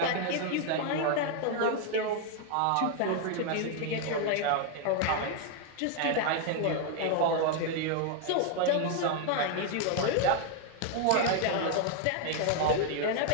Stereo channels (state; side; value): different; both; correlation 0.00